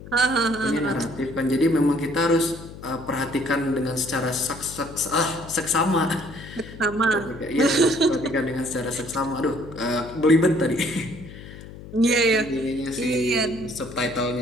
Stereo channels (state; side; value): noise; left; hum, 15 dB below the sound